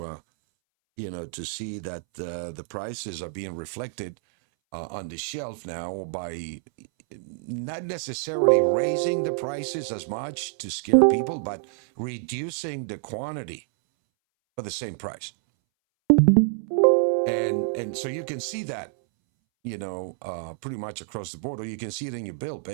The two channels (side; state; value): left; silent; 60 dB below the other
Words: to see that the prices are being reflected on the shelf now by not necessarily raising the prices as much to scare people, but reducing the quantity for the same price. And so you can see that, pretty much across the board, or you can see it in your bill